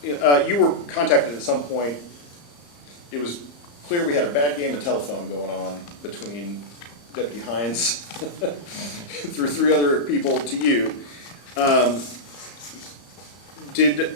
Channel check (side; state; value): right; late; 34 ms